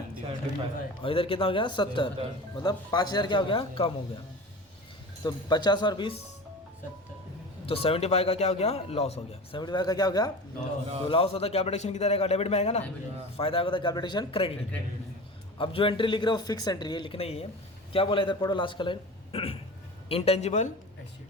75, और इधर कितना हो गया 70, मतलब 5,000 क्या हो गया, कम हो गया। तो 50 और 20, तो 75 का क्या हो गया, लॉस हो गया। 75 का क्या हो गया, तो लॉस होता है कैपिटल किधर आएगा, डेबिट में आएगा ना, फायदा होता है कैपिटल क्रेडिट। अब जो एंट्री लिख रहे हो फिक्स एंट्री है, लिखना ही है। क्या बोला इधर, पढ़ो लास्ट का लाइन, इंटेंजिबल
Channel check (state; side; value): normal; both; correlation 0.33